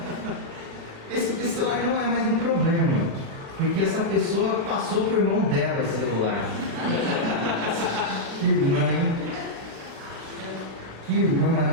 Esse celular não é mais um problema, porque essa pessoa passou por mão dela esse celular. Que irmã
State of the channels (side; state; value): left; late; 36 ms